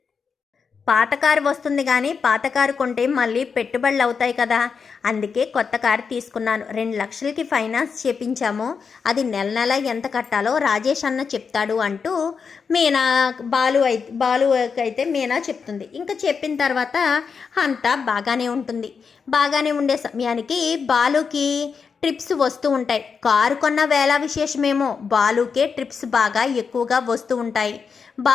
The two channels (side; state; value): right; quieter; 5.8 dB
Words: పాత కారు వస్తుంది కానీ పాత కారు కొంటే మళ్ళీ పెట్టుబడులు అవుతాయి కదా, అందుకే కొత్త కారు తీసుకున్నాను. 2 లక్షలకి ఫైనాన్స్ చేపించాము, అది నెల నెల ఎంత కట్టాలో రాజేష్ అన్న చెప్తాడు అంటూ మీనా బాలు అయితే మీనా చెప్తుంది. ఇంకా చెప్పిన తర్వాత అంతా బాగానే ఉంటుంది. బాగానే ఉండే సమయానికి బాలుకి ట్రిప్స్ వస్తూ ఉంటాయి. కారు కొన్న వేళ విశేషమేమో బాలుకే ట్రిప్స్ బాగా ఎక్కువగా వస్తూ ఉంటాయి.